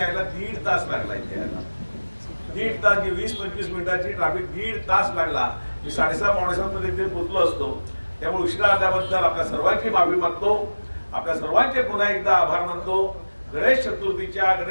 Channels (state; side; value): inverted; both; correlation -1.00